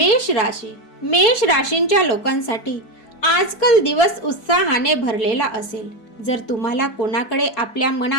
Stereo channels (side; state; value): right; late; 4.6 ms